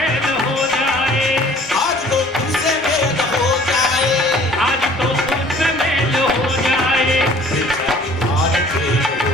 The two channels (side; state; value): both; normal; correlation 0.52